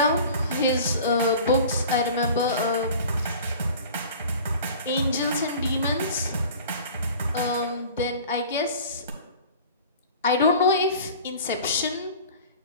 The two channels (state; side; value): inverted; both; correlation -0.43